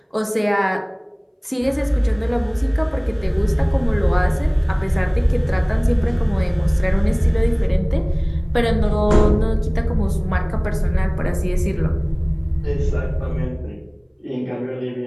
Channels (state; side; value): identical; both; correlation 1.00